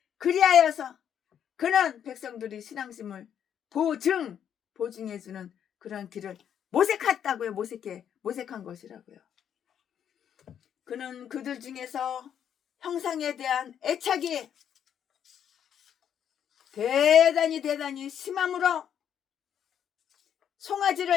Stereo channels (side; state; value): right; quieter; 9.0 dB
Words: 그리하여서 그는 백성들이 신앙심을 보증해주는 그런 길을 모색한 것이라고요. 그는 그들 중에서 형상에 대한 애착이 대단히 심함으로